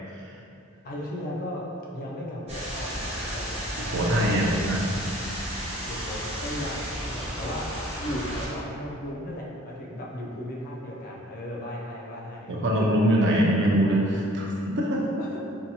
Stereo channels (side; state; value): both; normal; correlation 0.54